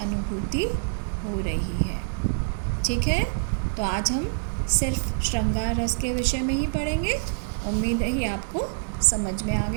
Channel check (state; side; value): silent; left; digital silence